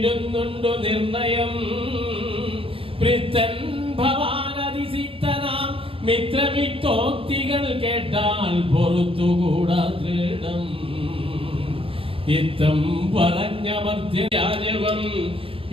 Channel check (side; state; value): left; late; 0.27 ms